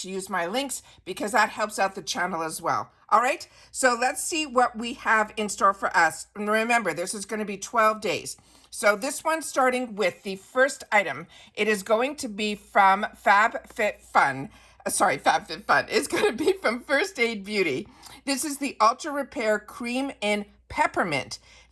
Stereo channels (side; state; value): both; identical; correlation 1.00